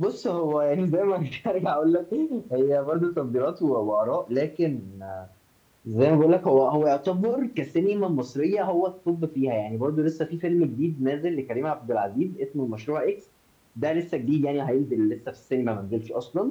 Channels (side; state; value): both; identical; correlation 1.00